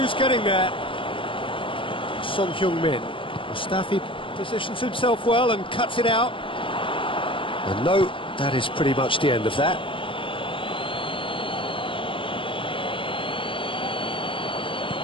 getting there? Son Heung-min. Mustafi positions himself well and cuts it out. And no, that is pretty much the end of that.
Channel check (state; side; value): late; right; 0.25 ms